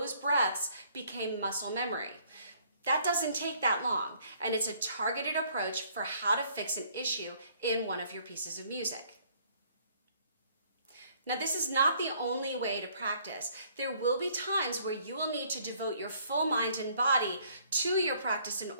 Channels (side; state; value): both; inverted; correlation -0.62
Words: breaths became muscle memory. That doesn't take that long, and it's a targeted approach for how to fix an issue in one of your pieces of music. Now, this is not the only way to practice. There will be times where you will need to devote your full mind and body to your practice in